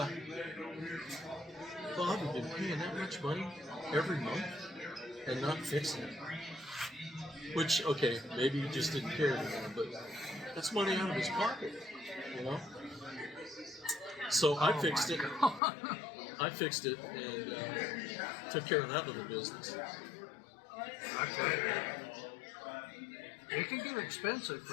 Bob had been paying that much money every month and not fixing it. Which, okay, maybe he just didn't care anymore, but that's money out of his pocket, So I fixed it. I fixed it and took care of that little business. Okay. It can get expensive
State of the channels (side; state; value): right; drops out; at 15.6 s